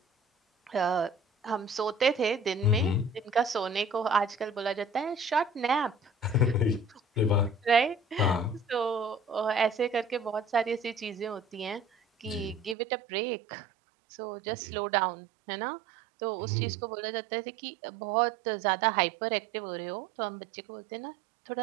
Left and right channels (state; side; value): drops out; left; at 12.8 s